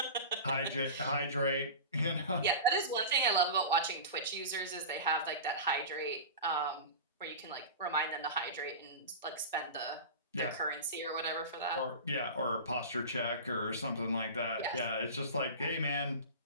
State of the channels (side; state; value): both; inverted; correlation -0.30